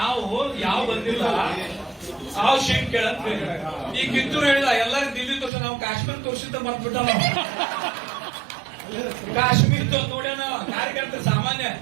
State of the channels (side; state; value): left; drops out; at 5.5 s